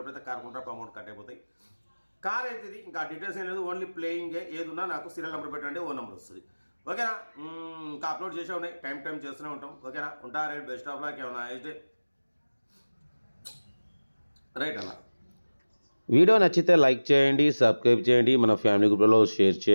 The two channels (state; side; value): inverted; both; correlation -1.00